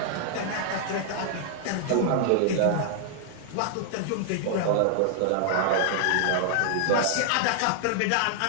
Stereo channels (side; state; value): both; different; correlation -0.01